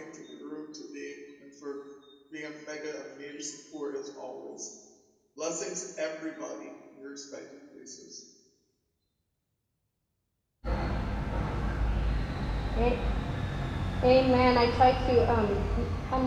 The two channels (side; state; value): both; identical; correlation 1.00